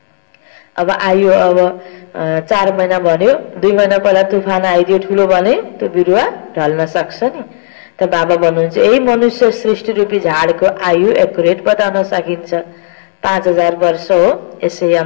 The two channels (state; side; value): silent; right; digital silence